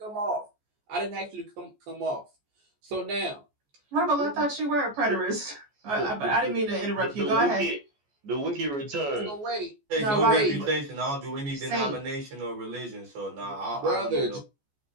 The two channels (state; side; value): late; left; 14 ms